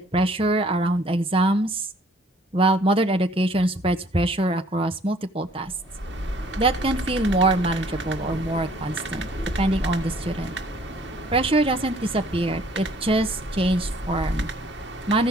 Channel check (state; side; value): normal; both; correlation 0.58